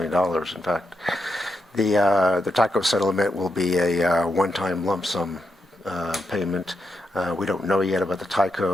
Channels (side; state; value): both; normal; correlation 0.84